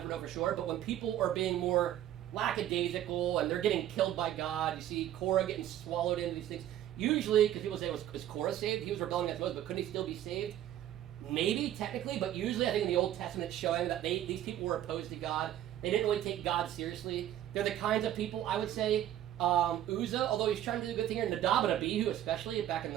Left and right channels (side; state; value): left; quieter; 12.0 dB